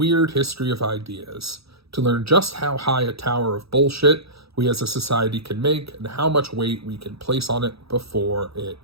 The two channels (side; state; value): left; late; 0.77 ms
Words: history of ideas, to learn just how high a tower of bullshit we as a society can make and how much weight we can place on it before it